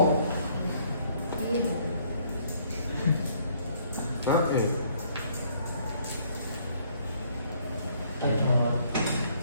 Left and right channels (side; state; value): both; inverted; correlation -0.65